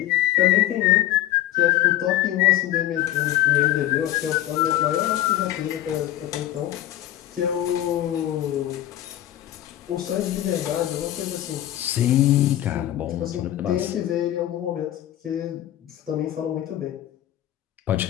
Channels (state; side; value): quieter; right; 13.5 dB